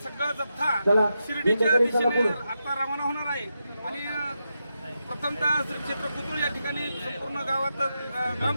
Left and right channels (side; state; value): both; inverted; correlation -0.87